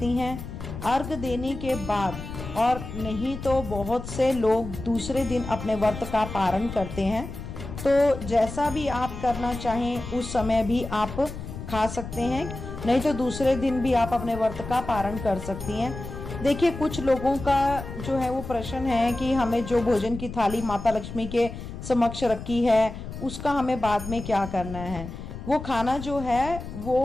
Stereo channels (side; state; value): left; noise; rumble, 9 dB below the sound